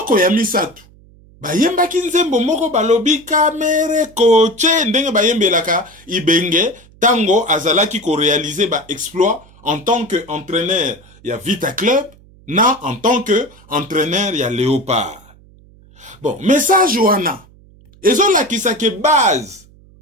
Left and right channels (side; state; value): right; noise; hum, 26 dB below the sound